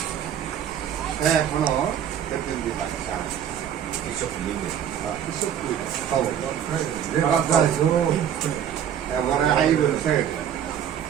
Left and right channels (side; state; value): left; quieter; 9.4 dB